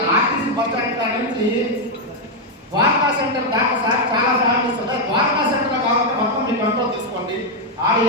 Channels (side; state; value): both; normal; correlation 0.01